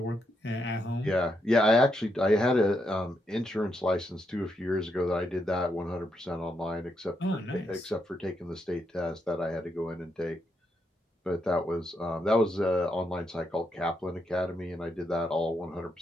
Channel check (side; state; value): both; normal; correlation 0.80